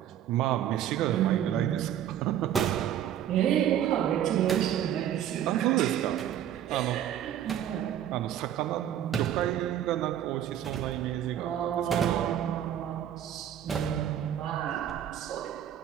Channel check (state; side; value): quieter; left; 10.7 dB